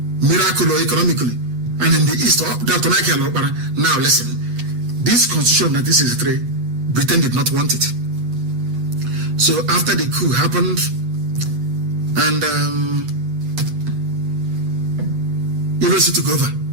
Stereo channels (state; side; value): late; left; 8.3 ms